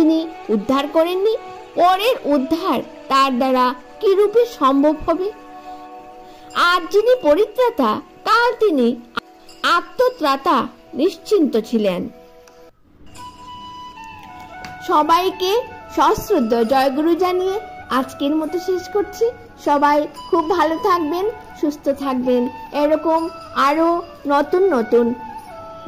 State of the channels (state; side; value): identical; both; correlation 1.00